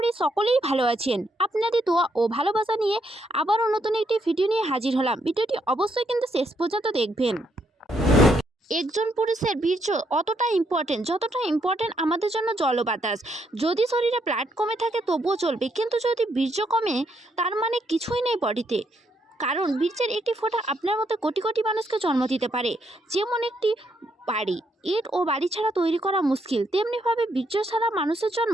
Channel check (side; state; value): both; normal; correlation 0.75